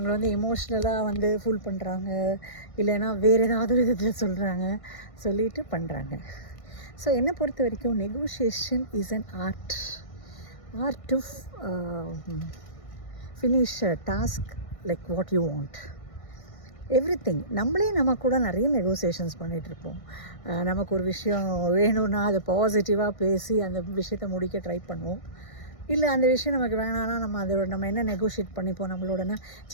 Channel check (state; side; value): late; right; 1.6 ms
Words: வந்து எமோஷ்னலாக வந்து ஃபுல் பண்ணுறாங்க, இல்லைன்னா வேறு ஏதாவது ஒரு விதத்தில் சொல்லிட்டு பண்ணுறாங்க. ஸோ என்னை பொறுத்த வரைக்கும் negotiation is an art to finish a task like what you want. Everything நம்ம கூட நிறைய நெகோசியேஷன்ஸ் பண்ணிகிட்ருப்போம். நமக்கு ஒரு விஷயம் வேணும்னா அதை பாசிட்டிவாக பேசி அந்த விஷயத்தை முடிக்க ட்ரை பண்ணுவோம். இல்லை அந்த விஷயம் நமக்கு வேணான்னா நம்ம என்ன நெகோஷியேட் பண்ணிப்போம் நம்மளோடனா,